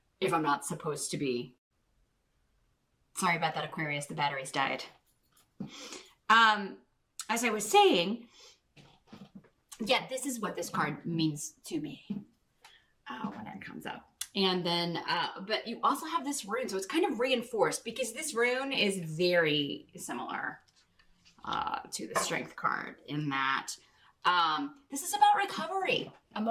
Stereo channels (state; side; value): identical; both; correlation 1.00